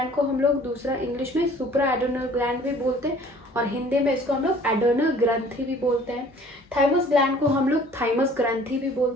को हम लोग दूसरा इंग्लिश में सुप्रा एडर्नल ग्लैंड भी बोलते हैं, और हिंदी में इसको हम लोग एडर्नल ग्रंथि भी बोलते हैं। थाइमस ग्लैंड को हम लोग थाइमस ग्रंथि भी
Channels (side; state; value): both; normal; correlation 0.52